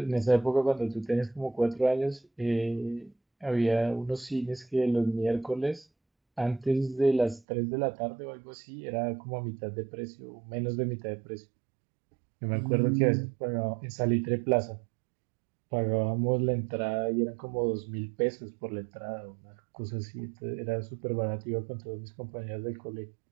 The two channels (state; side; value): drops out; left; at 7.5 s